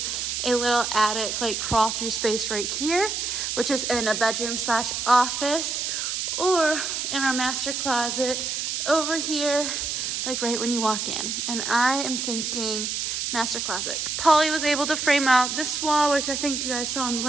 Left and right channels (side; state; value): right; noise; hiss, 2 dB below the sound